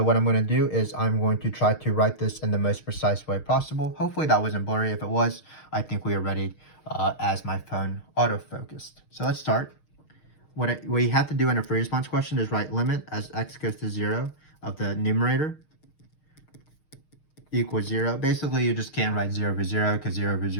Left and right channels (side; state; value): right; late; 6.5 ms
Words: what I'm going to do is I'm going to try to write this in the most precise way possible. Hopefully that wasn't blurry. If it was, I think we are ready as my phone auto-focused. So let's start. What we have to do in a free response question is write limit as x goes to 0 of the numerator equals 0. Basically, you just can't write 0 over 0 because 0 over